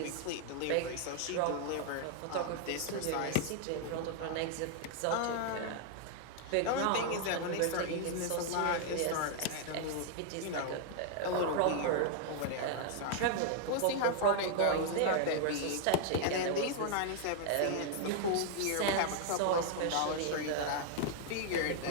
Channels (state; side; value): different; both; correlation 0.00